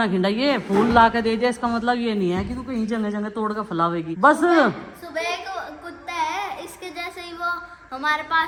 खिंडाइए, फूल ला के दे दिया इसका मतलब ये नहीं है कि तू कहीं जगह जगह तोड़ कर फैलावेगी बस। सुबह एक कुत्ता है इसके जैसे ही, वो हमारे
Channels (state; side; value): identical; both; correlation 1.00